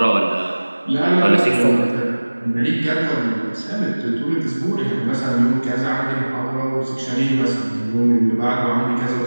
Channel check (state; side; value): inverted; both; correlation -1.00